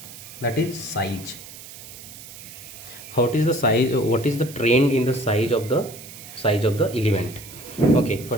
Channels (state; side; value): noise; right; hiss, 15 dB below the sound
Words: that is size. What is the size, what is the trend in the size of the element? Okay,